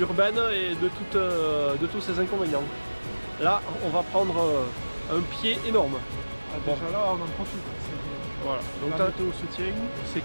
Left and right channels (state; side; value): inverted; both; correlation -1.00